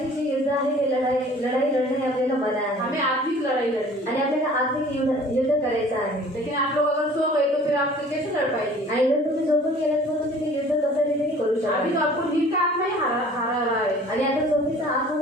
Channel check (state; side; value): normal; both; correlation 0.49